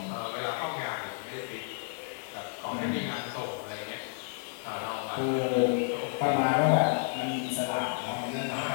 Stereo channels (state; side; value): silent; right; 56 dB below the other